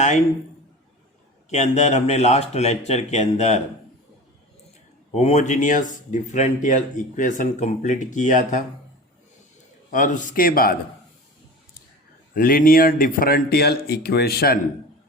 के अंदर हमने लास्ट लेक्चर के अंदर होमोजीनियस डिफरेंशियल इक्वेशन कंप्लीट किया था और उसके बाद लीनियर डिफरेंशियल इक्वेशन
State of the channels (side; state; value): both; normal; correlation 0.34